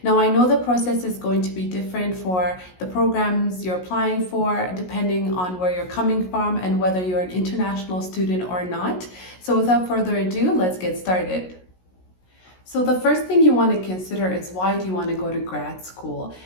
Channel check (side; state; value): right; late; 16 ms